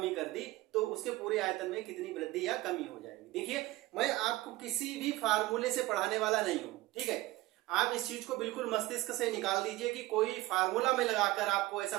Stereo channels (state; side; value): quieter; left; 18.3 dB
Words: कर दी, तो उसके पूरे आयतन में कितनी वृद्धि या कमी हो जाएगी। देखिए मैं आपको किसी भी फार्मूले से पढ़ाने वाला नहीं हूं, ठीक है। आप इस चीज को बिल्कुल मस्तिष्क से निकाल दीजिए कि कोई फार्मूला में लगाकर आपको ऐसा